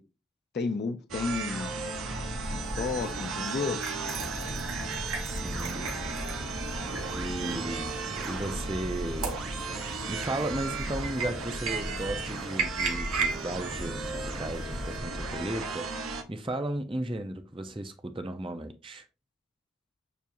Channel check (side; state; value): both; normal; correlation 0.61